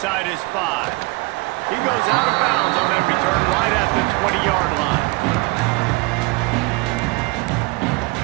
his 5. He goes out of bounds on that return right at the 20-yard line.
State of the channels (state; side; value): quieter; left; 26.1 dB